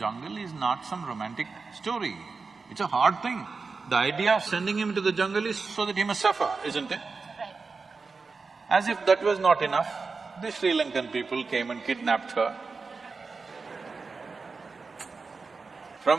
is not some romantic story. It's a hard thing. The idea of sending him to the jungle is so that he must suffer, isn't it? Right. As if that was not enough, the Sri Lankan people came and kidnapped her.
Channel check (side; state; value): left; quieter; 4.4 dB